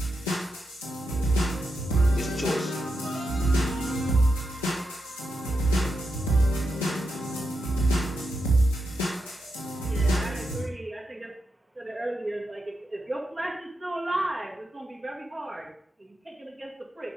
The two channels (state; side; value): normal; both; correlation 0.86